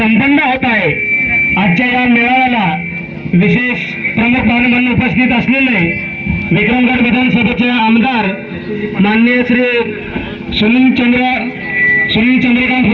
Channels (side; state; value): both; identical; correlation 1.00